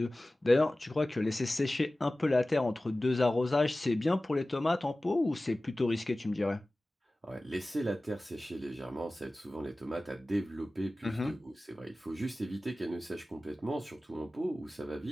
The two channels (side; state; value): both; normal; correlation 0.97